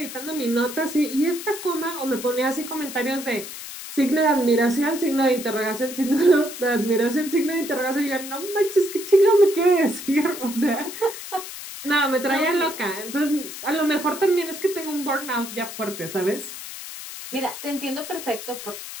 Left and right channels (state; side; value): noise; left; hiss, 10 dB below the sound